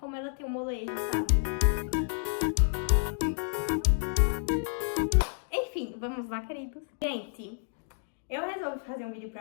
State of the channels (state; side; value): silent; right; digital silence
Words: ela tem um molejo, sabe? Enfim, vamos lá, queridos. Gente, eu resolvi fazer um vídeo